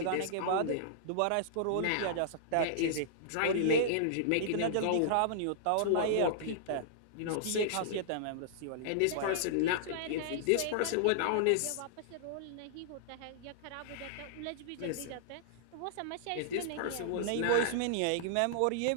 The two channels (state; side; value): different; both; correlation -0.02